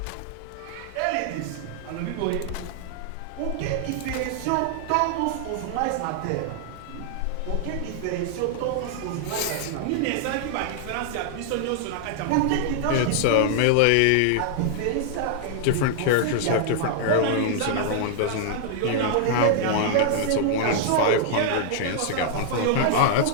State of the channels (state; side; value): different; both; correlation -0.01